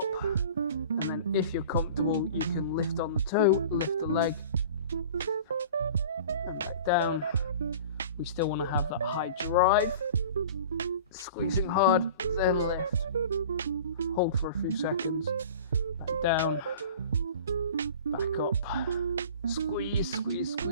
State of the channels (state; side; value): inverted; both; correlation -0.41